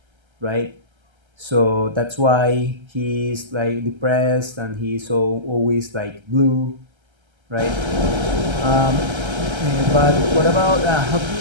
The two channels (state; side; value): late; left; 1.3 ms